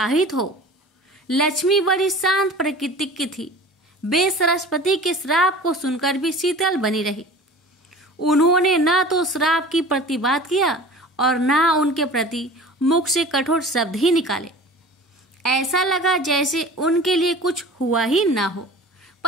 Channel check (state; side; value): normal; both; correlation 0.41